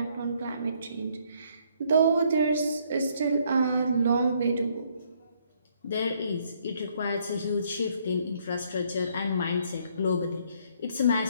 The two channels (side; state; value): both; inverted; correlation -0.67